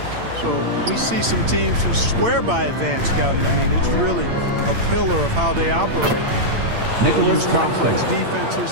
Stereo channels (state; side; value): late; left; 8.8 ms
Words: So we see some teams who swear by advanced scouting. I mean, it's really a pillar of how they operate. They'll use complex